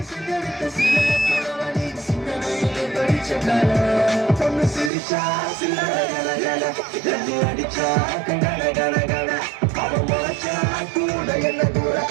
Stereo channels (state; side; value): drops out; left; at 4.9 s